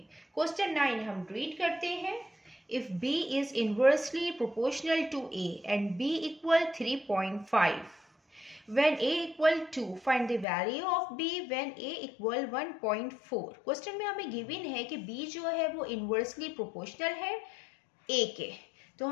क्वेश्चन 9 हम रीड करते हैं। If B is inversely proportional to A and B equal 3.5, when A equal 2 find the value of B when A equal 1.4। Question में हमें गिवन है कि B जो है वो इनवर्सली प्रोपोर्शनल है A के, तो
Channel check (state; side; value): drops out; right; at 10.5 s